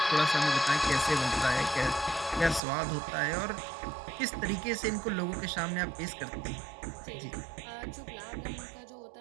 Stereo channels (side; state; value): left; drops out; at 2.6 s